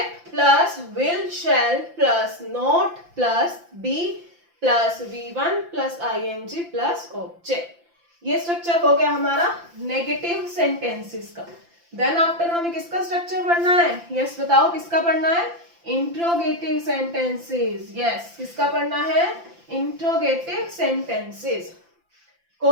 plus will shall plus not plus be plus V1 plus ing plus object. ये स्ट्रक्चर हो गया हमारा नेगेटिव सेंटेंसेस का। देन आफ्टर हमें किसका स्ट्रक्चर पढ़ना है, यस बताओ किसका पढ़ना है, इंट्रोगेटिव सेंटेंसेस। यस, किसका पढ़ना है, इंट्रोगेटिव सेंटेंसेस।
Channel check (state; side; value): late; left; 5.8 ms